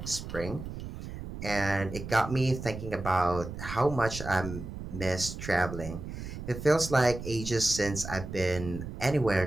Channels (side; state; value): right; noise; rumble, 9 dB below the sound